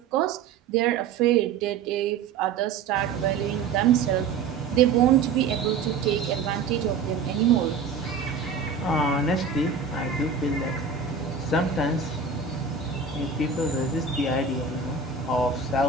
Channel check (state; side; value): quieter; left; 5.5 dB